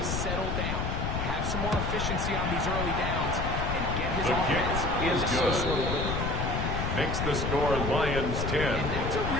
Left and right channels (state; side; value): noise; left; rumble, 1 dB below the sound